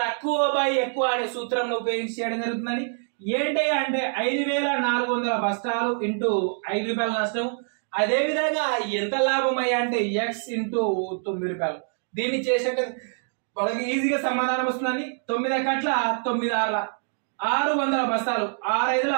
బై ఎక్కువ అనే సూత్రం ఉపయోగించి చేయడం జరుగుతుందని. ఏంటి అంటే 5,400 బస్తాలు ఇంటూ 5 రూపాయల నష్టం. అదే విధంగా ఎంత లాభం అయ్యా అంటే ఎక్స్ ఇంటూ 9 రూపాయలు. దీన్ని చేసినట్టు వాళ్ళకి ఈజీగా సమాధానం వస్తుందండి. 9 కట్ల 9 6 600 బస్తాలు,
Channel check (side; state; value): left; silent; 62 dB below the other